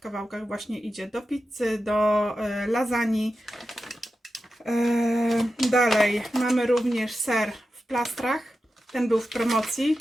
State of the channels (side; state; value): both; normal; correlation 0.91